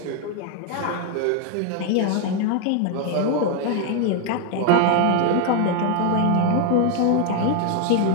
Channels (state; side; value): different; both; correlation 0.01